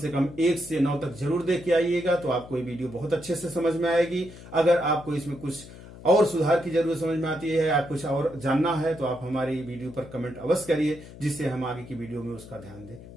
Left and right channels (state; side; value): noise; left; hum, 17 dB below the sound